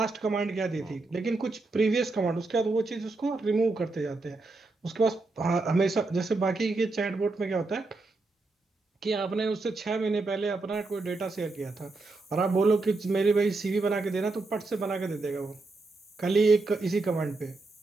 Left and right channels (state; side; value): quieter; left; 3.4 dB